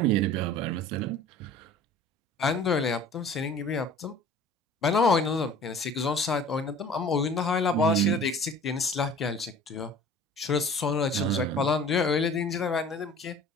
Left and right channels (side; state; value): both; normal; correlation 0.46